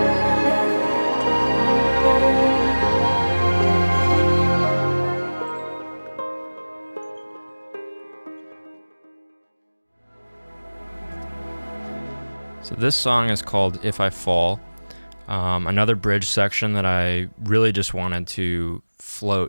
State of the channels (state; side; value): inverted; both; correlation -1.00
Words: this song is called If I Fall. Another bridge section that I really just wanted to